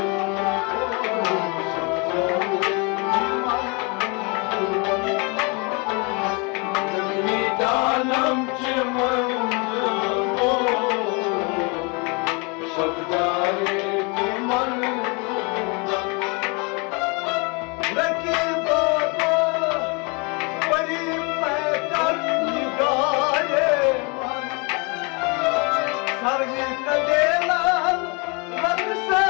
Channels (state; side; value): quieter; right; 31.3 dB